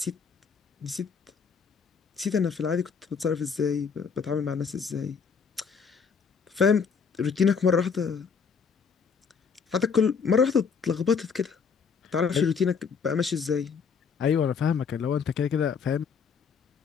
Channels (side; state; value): right; quieter; 5.9 dB